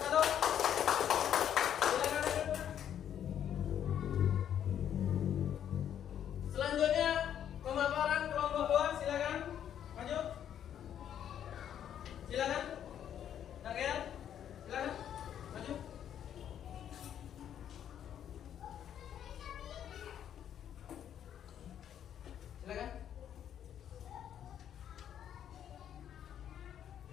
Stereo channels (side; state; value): right; quieter; 9.7 dB